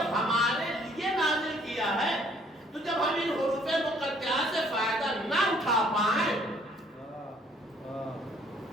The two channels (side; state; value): both; normal; correlation 0.61